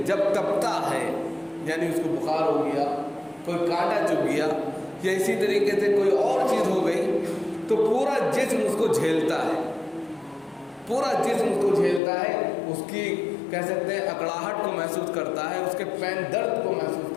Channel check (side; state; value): right; drops out; at 12.0 s